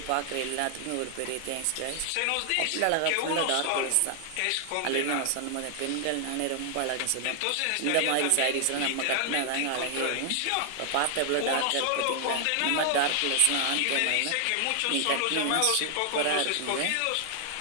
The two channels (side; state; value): both; different; correlation 0.00